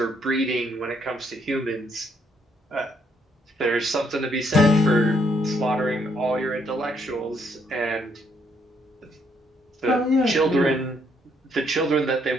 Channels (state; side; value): normal; both; correlation 0.71